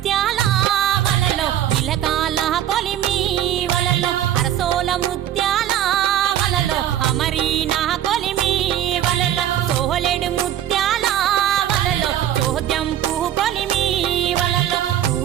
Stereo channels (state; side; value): quieter; left; 11.4 dB